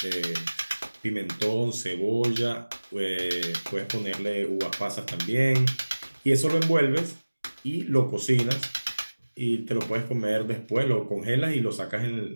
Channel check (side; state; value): both; inverted; correlation -1.00